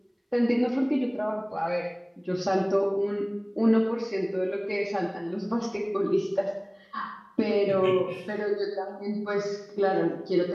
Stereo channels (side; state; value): both; identical; correlation 1.00